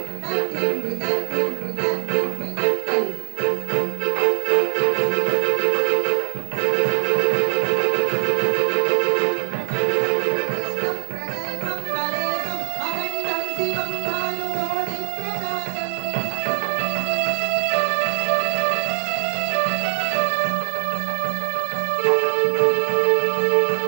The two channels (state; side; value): silent; left; digital silence